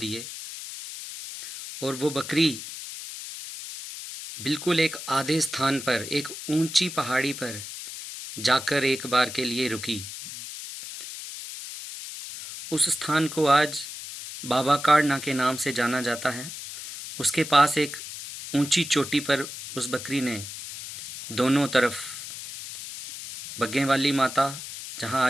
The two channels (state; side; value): noise; left; hiss, 10 dB below the sound